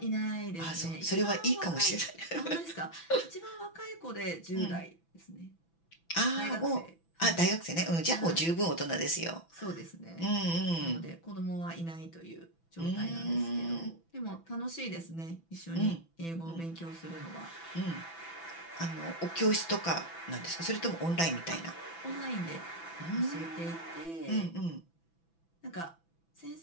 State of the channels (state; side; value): late; right; 6.0 ms